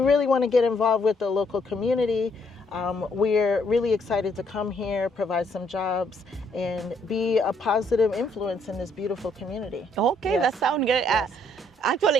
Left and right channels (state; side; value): normal; both; correlation 0.69